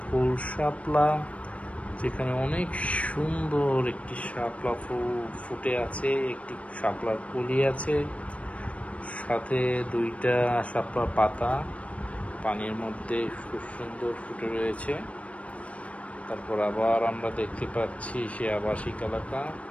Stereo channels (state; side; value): late; right; 0.064 ms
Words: ফুল শাপলা, যেখানে অনেক সুন্দর একটি শাপলা ফুল ফুটে আছে, একটি শাপলার কলি আছে, সাথে দুইটা শাপলার পাতা পানির মধ্যে খুব সুন্দর ফুটে রয়েছে। তারপর আবার আমরা দেখতে পাচ্ছি সে আবাসিক এলাকা।